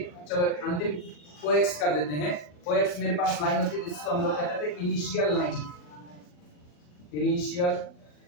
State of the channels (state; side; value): late; right; 40 ms